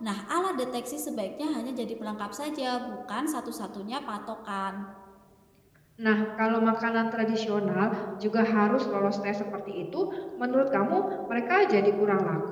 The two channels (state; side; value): identical; both; correlation 1.00